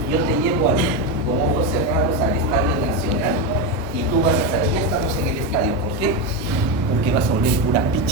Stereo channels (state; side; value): normal; both; correlation 0.12